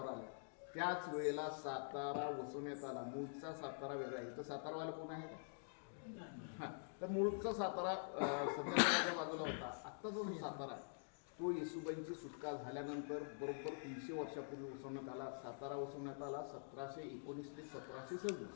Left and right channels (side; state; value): right; silent; digital silence